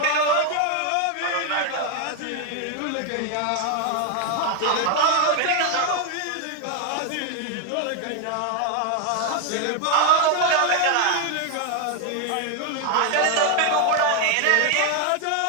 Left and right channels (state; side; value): different; both; correlation 0.01